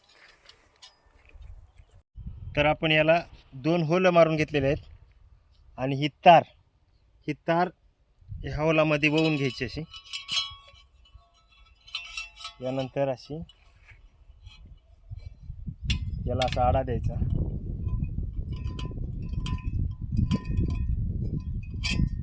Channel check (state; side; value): identical; both; correlation 1.00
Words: तर आपण याला 2 होल मारून घेतलेले आहेत आणि ही तार ह्या होलामध्ये वळून घ्यायची अशी. यानंतर अशी याला असा आडा द्यायचा